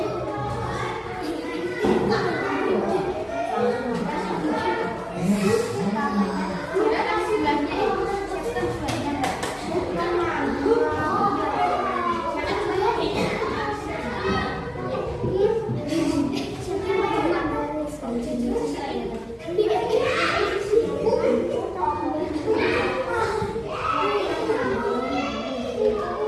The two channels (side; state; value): both; identical; correlation 1.00